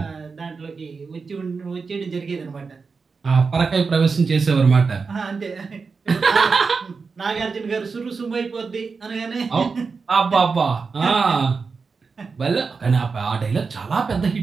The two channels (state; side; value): quieter; left; 4.8 dB